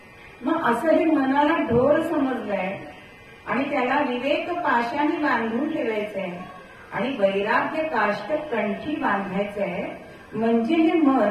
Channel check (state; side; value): identical; both; correlation 1.00